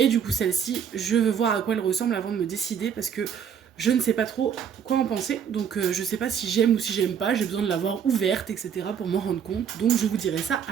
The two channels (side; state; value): left; quieter; 7.8 dB